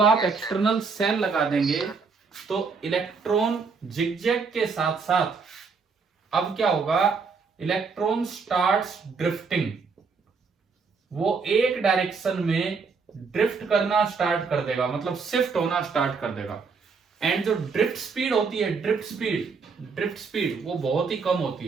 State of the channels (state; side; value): quieter; left; 5.0 dB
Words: आप एक्सटर्नल सेल लगा देंगे तो इलेक्ट्रॉन जिगजैग के साथ साथ अब क्या होगा, इलेक्ट्रॉन स्टार्ट्स ड्रिफ्टिंग, वो एक डायरेक्शन में ड्रिफ्ट करना स्टार्ट कर देगा, मतलब शिफ्ट होना स्टार्ट कर देगा। एंड जो ड्रिफ्ट स्पीड होती है, ड्रिफ्ट स्पीड वो बहुत ही कम होती